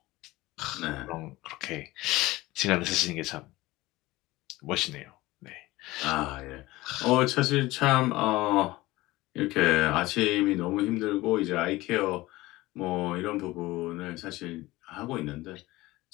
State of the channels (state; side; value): quieter; right; 19.2 dB